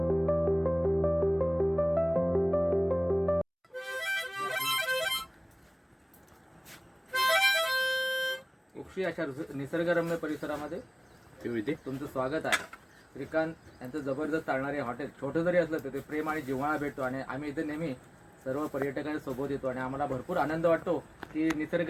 उक्षी अशा निसर्गरम्य परिसरामध्ये तुमचं स्वागत आहे. श्रीकांत यांचं जबरदस्त चालणारे हॉटेल छोटं जरी असलं तर ते प्रेम आणि जिव्हाळा भेटतो आणि आम्ही इथे नेहमी सर्व पर्यटकांच्या सोबत येतो आणि आम्हाला भरपूर आनंद वाटतो की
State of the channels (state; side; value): identical; both; correlation 1.00